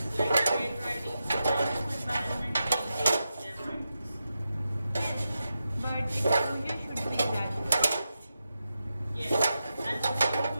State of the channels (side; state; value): both; inverted; correlation -0.89